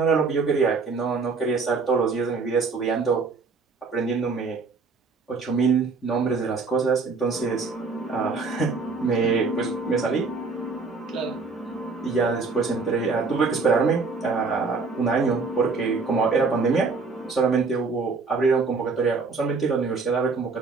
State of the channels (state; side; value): quieter; left; 4.4 dB